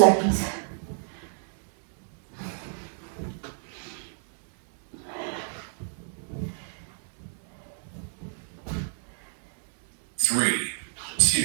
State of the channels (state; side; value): silent; left; digital silence